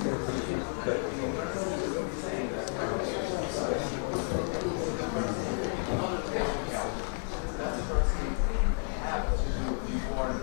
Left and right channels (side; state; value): right; silent; 56 dB below the other